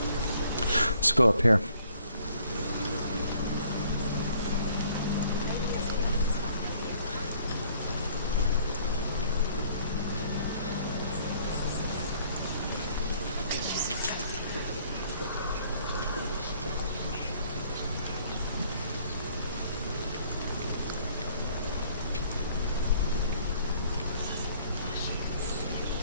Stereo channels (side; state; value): both; inverted; correlation -0.61